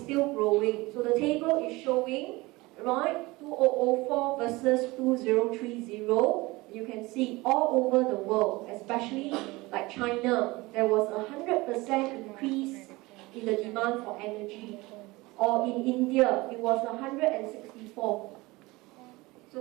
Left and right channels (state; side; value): quieter; left; 21.9 dB